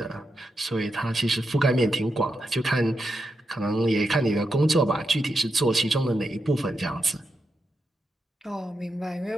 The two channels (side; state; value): both; normal; correlation 0.86